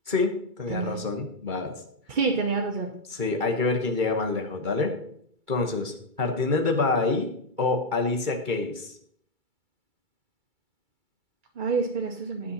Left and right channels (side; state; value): left; late; 2.3 ms